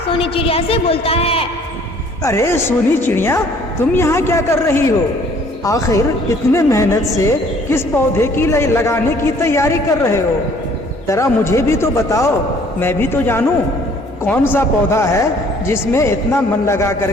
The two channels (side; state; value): both; normal; correlation 0.57